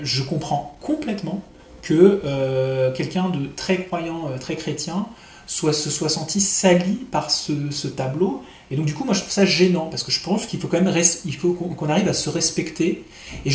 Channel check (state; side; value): identical; both; correlation 1.00